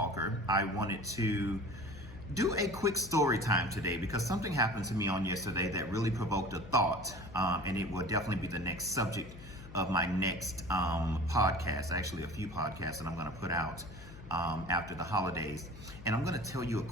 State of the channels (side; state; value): left; noise; hum, 16 dB below the sound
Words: I wanted to do a quick story time today because something happened to me on yesterday that really provoked a thought, and it will definitely be the next subject of my next podcast, actually a few podcasts that I'm going to put out after the holidays. And I'm going to tell you a